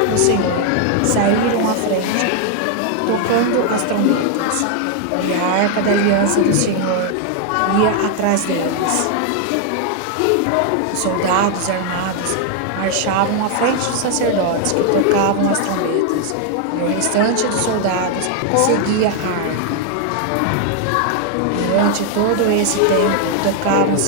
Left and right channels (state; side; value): different; both; correlation 0.00